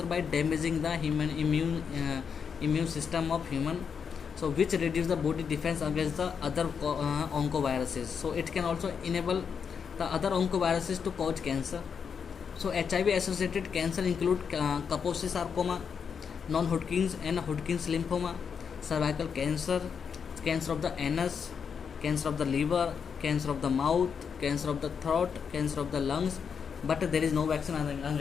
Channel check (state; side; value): quieter; right; 6.6 dB